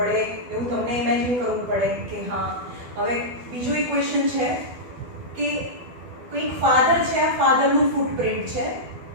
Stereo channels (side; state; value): left; late; 12 ms